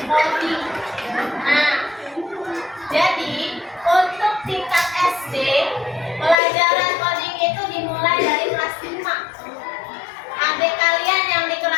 coding? Nah, jadi untuk tingkat SD, pelajaran coding itu dimulai dari kelas 5. Adik kalian yang di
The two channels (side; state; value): right; drops out; at 6.4 s